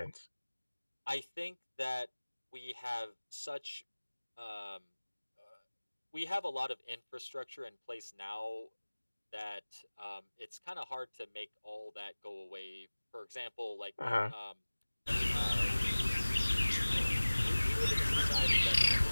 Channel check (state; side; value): inverted; both; correlation -1.00